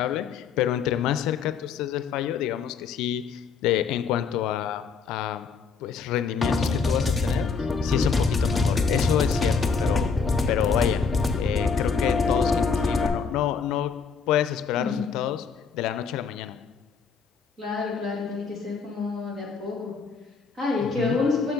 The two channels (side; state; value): right; quieter; 5.6 dB